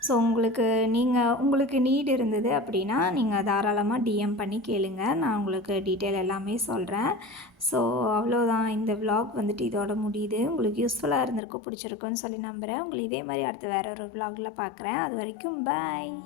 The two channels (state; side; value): drops out; right; at 11.4 s